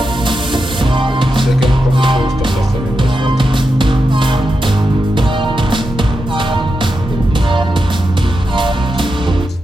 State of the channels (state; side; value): normal; both; correlation 0.88